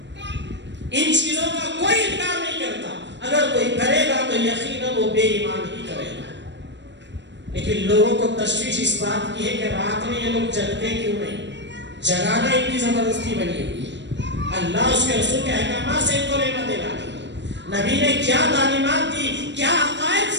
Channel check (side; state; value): left; late; 0.52 ms